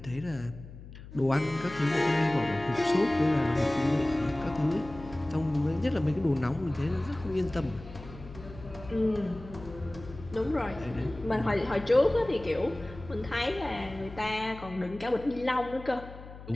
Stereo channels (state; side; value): noise; left; hum, 15 dB below the sound